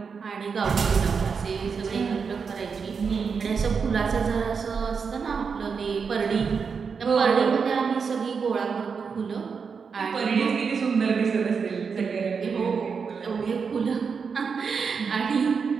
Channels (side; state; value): left; quieter; 5.7 dB